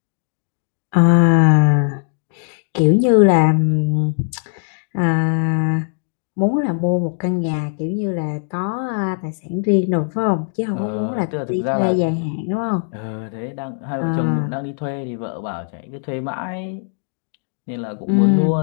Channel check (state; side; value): silent; right; digital silence